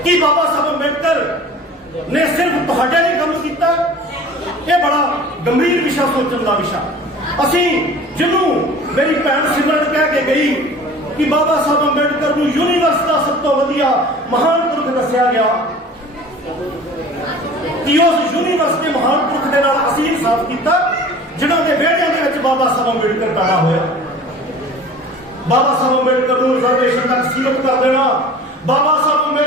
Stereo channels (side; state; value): both; normal; correlation 0.43